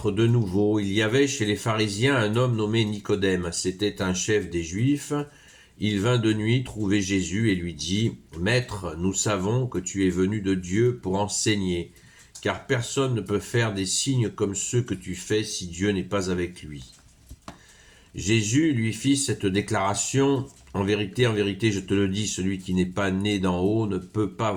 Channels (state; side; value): identical; both; correlation 1.00